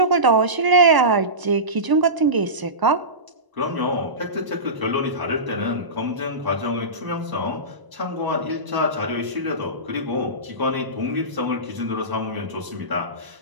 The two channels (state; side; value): late; left; 1.0 ms